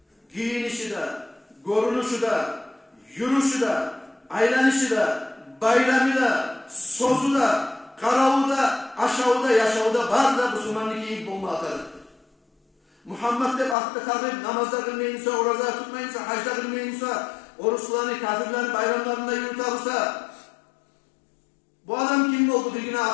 giyinişi de, görünüşü de, yürüyüşü de, aylanışı da, bayramı da, sözü da, karavu da, aşağı da, yaşağı da var da Müslümanlık iyi bomba atarır. Muhammed de aklı kalır, namazda kılmayınsa, oruçta tutmayınsa, hacda kılmayınsa, oruçlarını, kafirlerin bayramlarında yürütarsa, bu adam kim oldu? Bir güne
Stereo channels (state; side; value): drops out; right; at 13.8 s